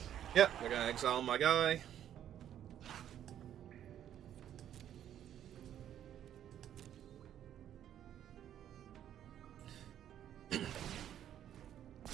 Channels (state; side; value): quieter; left; 10.6 dB